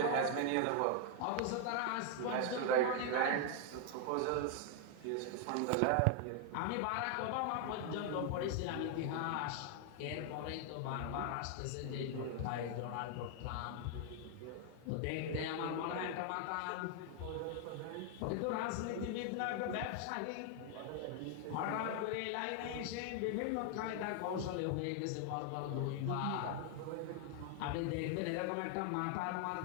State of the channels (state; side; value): different; both; correlation 0.00